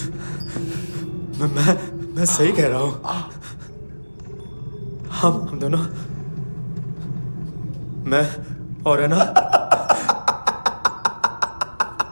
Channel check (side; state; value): both; inverted; correlation -1.00